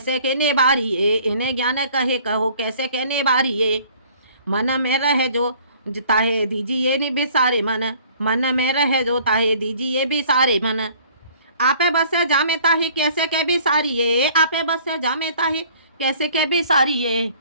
के निबारिये। इन्हें ज्ञान कहे कहो कैसे के निबारिये। मन में रहे जो ताहे दीजिए नि बिसारे मन। मन में रहे जो ताहे दीजिए बिसारे मन। आपे बस जामे ताही कैसे के बिसारिये। आपे बस जामे ताही कैसे के बिसारिये।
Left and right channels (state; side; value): inverted; both; correlation -0.54